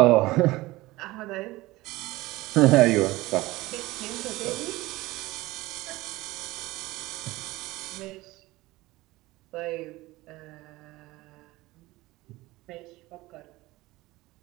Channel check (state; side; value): quieter; left; 19.4 dB